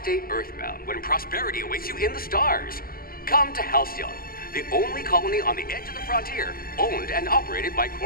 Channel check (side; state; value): right; late; 0.43 ms